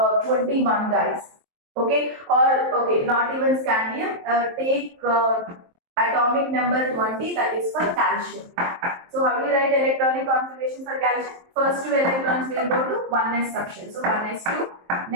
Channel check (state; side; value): late; left; 23 ms